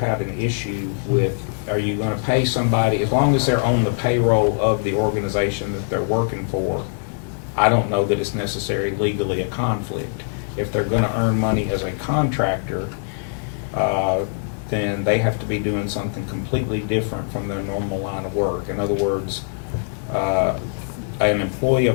an issue with, are you gonna pay somebody, as long as they're on the payroll of the organization that they're working for, I don't know that it's necessarily legally a conflict. If they're gonna earn money as a contractor, then they have to be doing something completely different from their normal line of work. In other words, an employee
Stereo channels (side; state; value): right; silent; digital silence